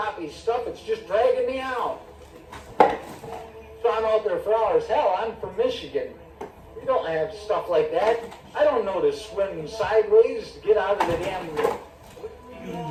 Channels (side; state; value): both; identical; correlation 1.00